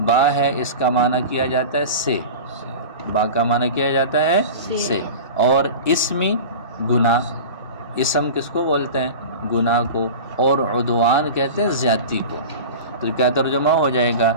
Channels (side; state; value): both; inverted; correlation -0.33